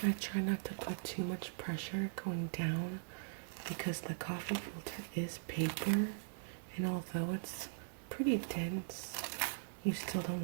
I try not to put too much pressure going down because the coffee filter is paper, and although it's pretty dense, you still don't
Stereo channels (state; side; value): silent; left; digital silence